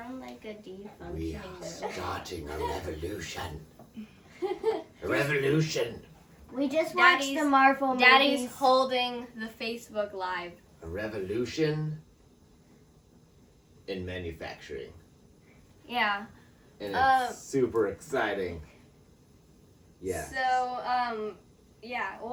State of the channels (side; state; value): both; identical; correlation 1.00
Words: like a defunctioning We are robot. starting a revolution. A revolution. We just watched the Marvel movies. Daddy's holding the Facebook Live. A revolution in manufacturing. Yeah. And it's super exciting. Yeah. So, yeah,